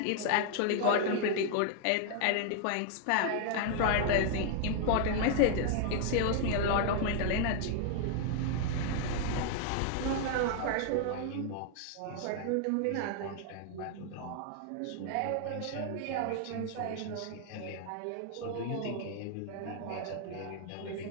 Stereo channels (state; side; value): different; both; correlation 0.00